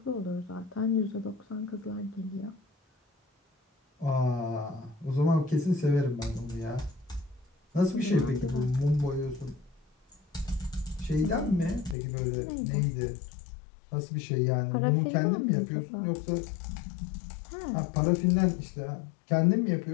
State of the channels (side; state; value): right; drops out; at 12.0 s